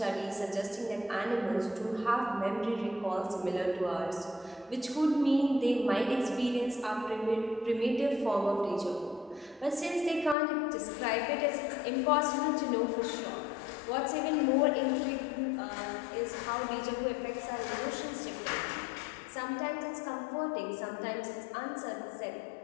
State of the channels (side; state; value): right; drops out; at 10.4 s